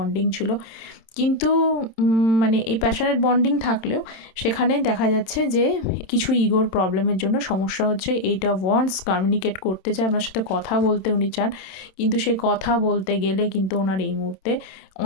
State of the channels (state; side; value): late; right; 27 ms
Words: ছিল। কিন্তু মানে এই প্যাশনেট বন্ডিং থাকলেও সেখানে দেখা যাচ্ছে যে কিছু ইগোর প্রবলেমের জন্য সমস্যা হচ্ছে। এইটা ওয়ান্স কমিউনিকেট করতে চায়, আপনার সাথে কথা বলতে উনি চান, কিন্তু সেই কথা বলতে গেলে কিন্তু ওনার এই মুহূর্তে